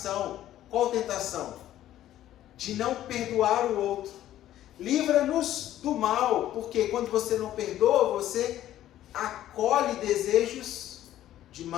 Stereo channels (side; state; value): right; quieter; 12.8 dB